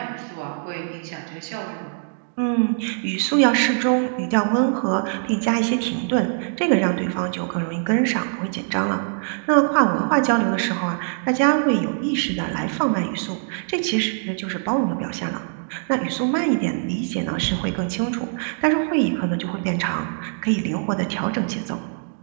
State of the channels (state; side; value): silent; left; digital silence